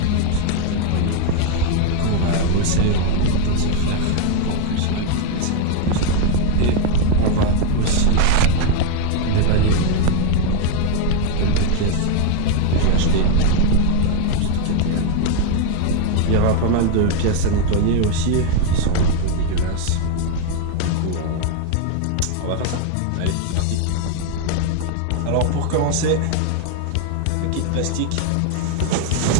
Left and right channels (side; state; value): both; different; correlation 0.01